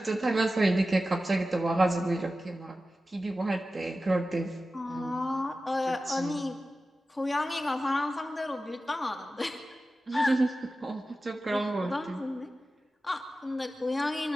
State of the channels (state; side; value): normal; both; correlation 0.94